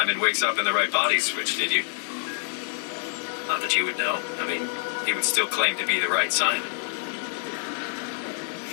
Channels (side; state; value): right; silent; digital silence